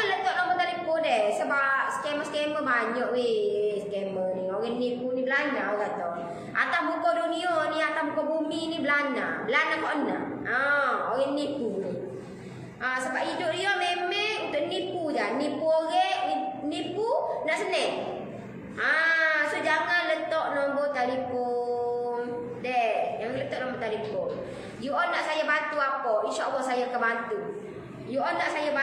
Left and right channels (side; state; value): both; identical; correlation 1.00